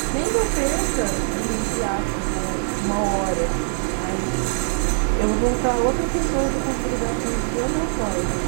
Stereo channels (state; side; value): silent; left; 64 dB below the other